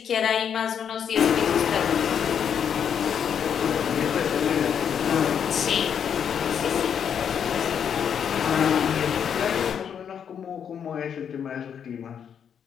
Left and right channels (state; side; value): quieter; right; 8.0 dB